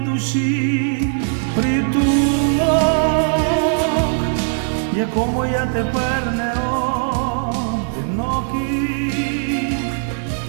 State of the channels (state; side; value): silent; left; digital silence